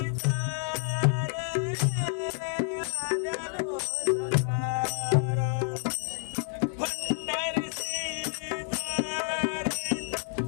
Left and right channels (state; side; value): silent; right; 58 dB below the other